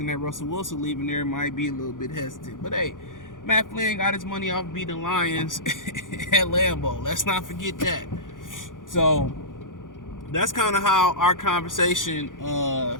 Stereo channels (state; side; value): late; right; 0.89 ms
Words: at Russell Wilson leaving there might be a little bit hesitant. But hey, Matt Flynn got his money off beating Lions at Lambeau. Let's not forget that. So that's kind of how our conversation